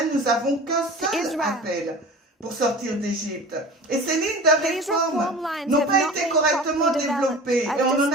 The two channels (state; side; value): normal; both; correlation 0.37